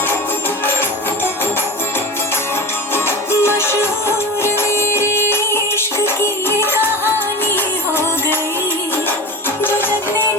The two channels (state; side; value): normal; both; correlation 0.29